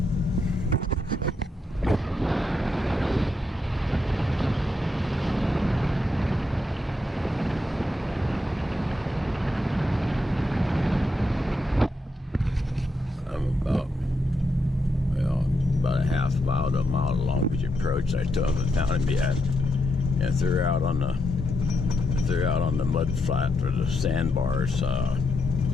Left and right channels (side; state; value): both; normal; correlation 0.82